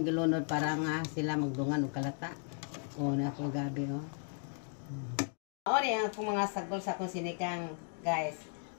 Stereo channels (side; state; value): right; silent; 54 dB below the other